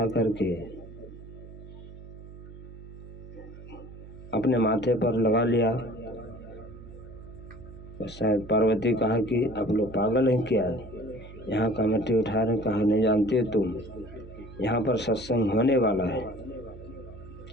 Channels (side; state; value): right; noise; hum, 15 dB below the sound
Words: करके अपने माथे पर लगा लिया। तो शायद पार्वती कहा कि आप लोग पागल हैं क्या, यहाँ का मिट्टी उठा रहे? कहा नहीं जानते तुम, यहाँ पर सत्संग होने वाला है।